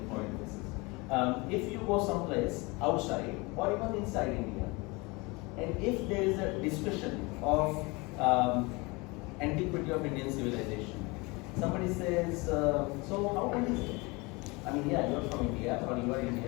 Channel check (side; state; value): right; quieter; 25.8 dB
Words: point in this. If you go someplace outside or even inside India, and if there is a discussion of Antiquity of Indian civilization, somebody says, so how old is it? I mean, yeah, you're from India or you are